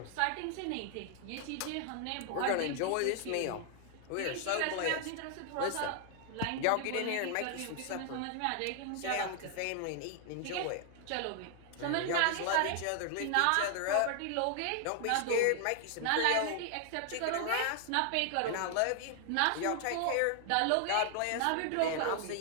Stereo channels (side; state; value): both; different; correlation 0.00